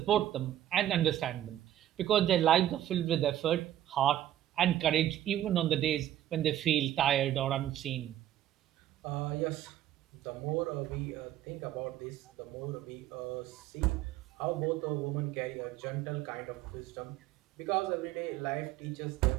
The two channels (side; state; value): left; quieter; 12.5 dB